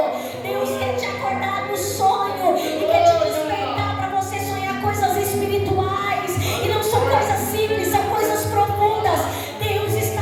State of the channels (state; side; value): identical; both; correlation 1.00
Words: Deus quer te acordar no sonho e quer te despertar para você sonhar coisas espirituais. E não são coisas simples, são coisas profundas. Deus